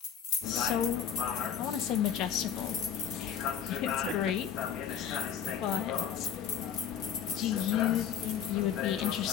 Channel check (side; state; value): right; quieter; 8.6 dB